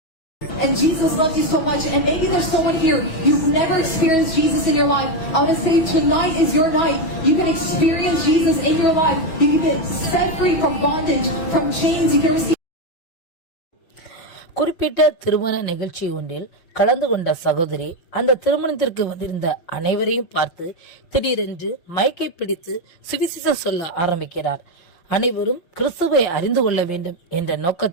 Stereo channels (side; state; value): right; late; 6.1 ms